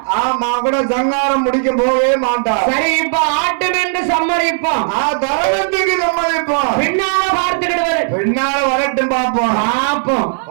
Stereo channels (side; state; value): left; silent; 60 dB below the other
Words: மகுட சங்காரம் முடிக்க போகவே மாட்டா. சரி, இப்ப ஆட்டம் என்று சம்மதிப்போம். தரணத்துக்கு சம்மதிப்போம். பின்னால பார்த்துக்கிடுவாரு. பின்னால வரட்டும், பாப்போம் பாப்போம்